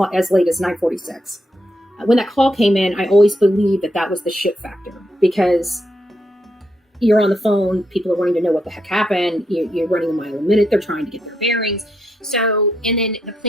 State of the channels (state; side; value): normal; both; correlation 0.80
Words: as 9:46. When that call came in, I always believed that was the shit factor, because you're on the phone, people are wanting to know what the heck happened. You're running a mile a minute. They're trying to get their bearings. So, and then the